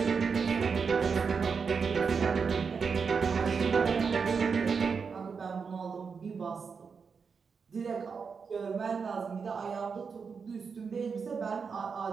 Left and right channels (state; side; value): quieter; left; 5.6 dB